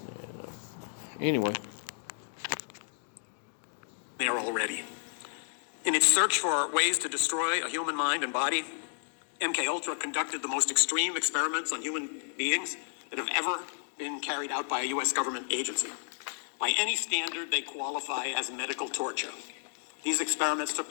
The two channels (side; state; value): right; silent; digital silence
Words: Anyway. There already. In its search for ways to destroy a human mind and body, MK-Ultra conducted the most extreme experiments on human beings that have ever been carried out by a U.S. government agency. By any standard, they qualify as medical torture. These experiments took